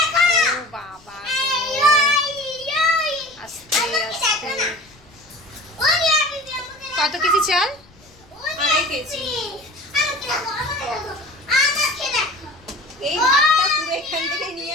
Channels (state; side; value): noise; left; rumble, 28 dB below the sound